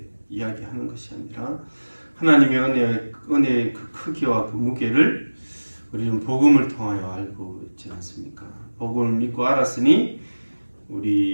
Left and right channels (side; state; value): both; inverted; correlation -1.00